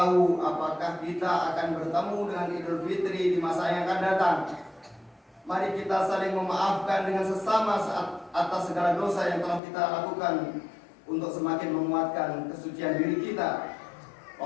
apakah kita akan bertemu dengan Idul Fitri di masa yang akan datang. Mari kita saling memaafkan dengan sesama saat atas segala dosa yang telah kita lakukan, untuk semakin menguatkan kesucian diri kita.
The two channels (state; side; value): drops out; right; at 9.6 s